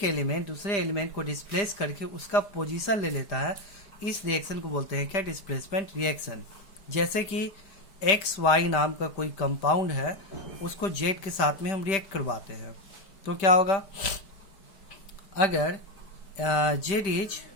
एलिमेंट दूसरे एलिमेंट को डिस्प्लेस करके उसका पोजीशन ले लेता है। इस रिएक्शन को बोलते हैं क्या? Displacement reaction. जैसे कि एक्स वाई नाम का कोई कंपाउंड है, उसको जेड के साथ में हम रिएक्ट करवाते हैं तो क्या होगा? अगर Z is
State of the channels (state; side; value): late; right; 5.1 ms